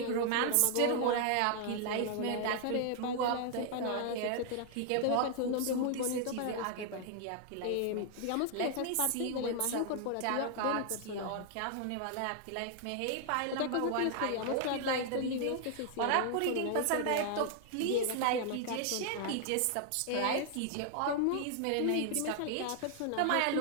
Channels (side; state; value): both; different; correlation 0.00